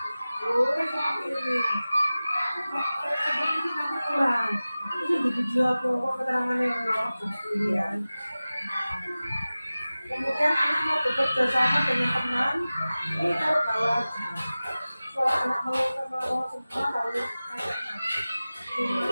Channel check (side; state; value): both; inverted; correlation -0.97